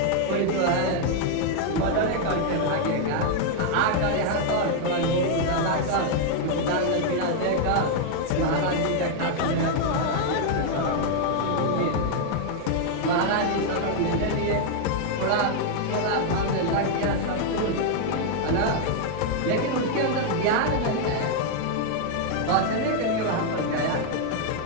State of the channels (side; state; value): both; different; correlation 0.00